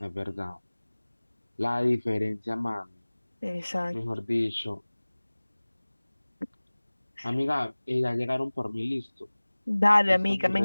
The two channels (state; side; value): inverted; both; correlation -1.00